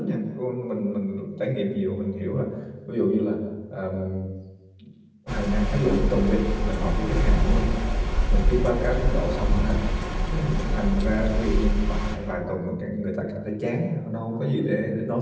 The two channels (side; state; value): both; identical; correlation 1.00